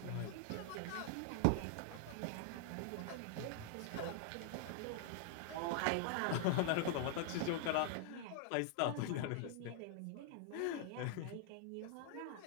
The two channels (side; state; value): both; different; correlation 0.00